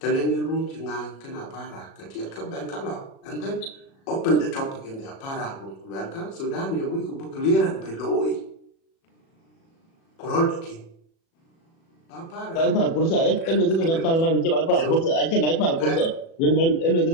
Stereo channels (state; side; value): late; right; 36 ms